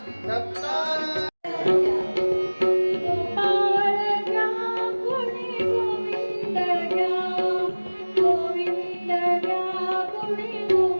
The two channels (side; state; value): both; inverted; correlation -1.00